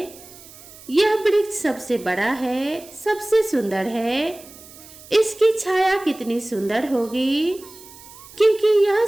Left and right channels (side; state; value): right; noise; hiss, 20 dB below the sound